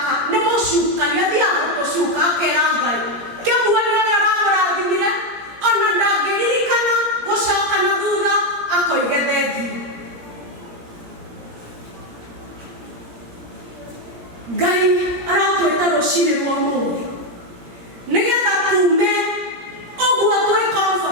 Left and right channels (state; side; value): late; left; 17 ms